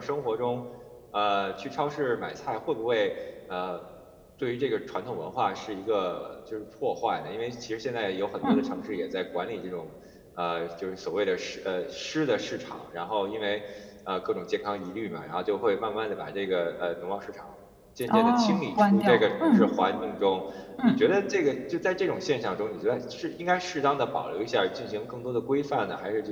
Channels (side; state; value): both; identical; correlation 1.00